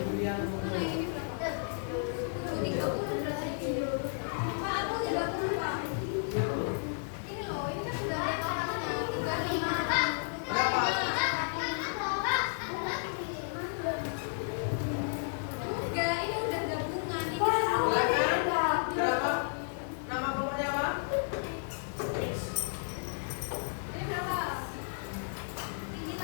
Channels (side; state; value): right; silent; 56 dB below the other